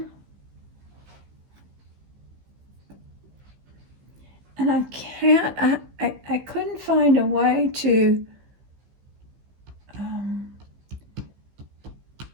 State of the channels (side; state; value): left; late; 15 ms